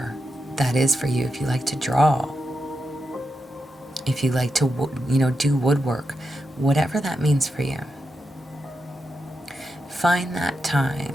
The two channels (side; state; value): both; normal; correlation 0.87